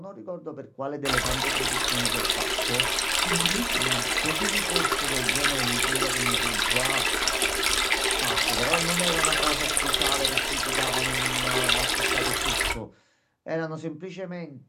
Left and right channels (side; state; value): both; identical; correlation 1.00